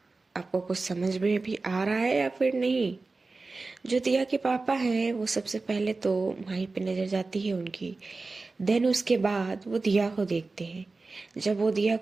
आपको कुछ समझ में भी आ रहा है या फिर नहीं? जो दिया के पापा हैं वो सबसे पहले तो माही पे नजर जाती है उनकी, देन उसके बाद वो दिया को देखते हैं। जब वो दिया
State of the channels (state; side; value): quieter; left; 3.7 dB